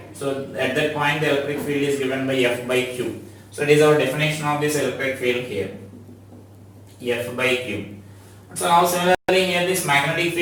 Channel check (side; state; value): both; identical; correlation 1.00